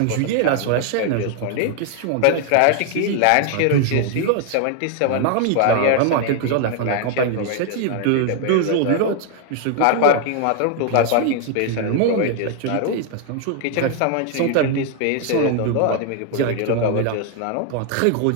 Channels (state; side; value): different; both; correlation 0.00